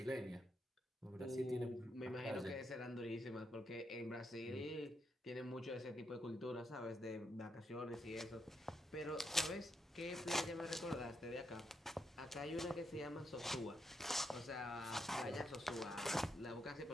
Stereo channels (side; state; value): both; normal; correlation 0.80